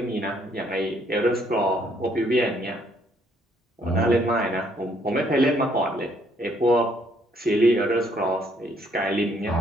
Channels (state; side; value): normal; both; correlation 0.67